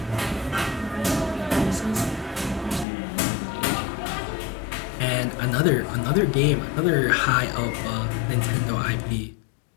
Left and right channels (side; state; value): right; drops out; at 2.9 s